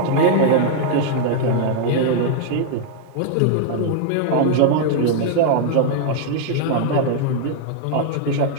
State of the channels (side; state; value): both; different; correlation 0.00